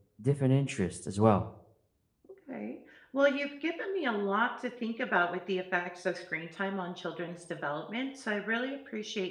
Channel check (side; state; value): both; identical; correlation 1.00